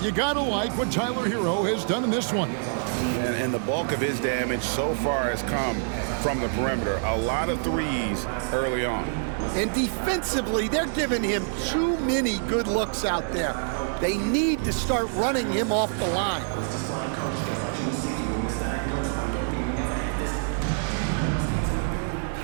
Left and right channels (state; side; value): silent; left; 61 dB below the other